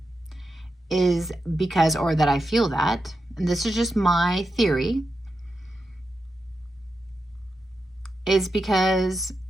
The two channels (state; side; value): normal; both; correlation 0.88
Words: is because, or that I feel that, and this is just my theory, is because